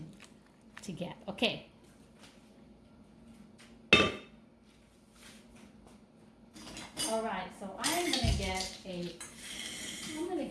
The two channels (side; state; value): both; identical; correlation 1.00